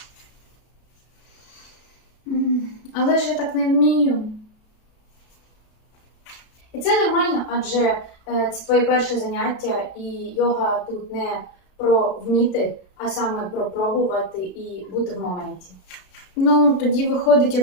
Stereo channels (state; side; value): late; right; 33 ms